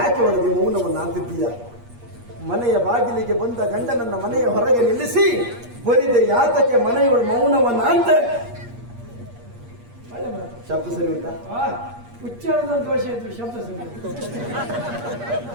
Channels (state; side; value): late; left; 8.5 ms